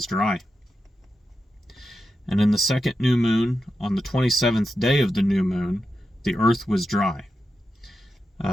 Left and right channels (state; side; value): normal; both; correlation 0.89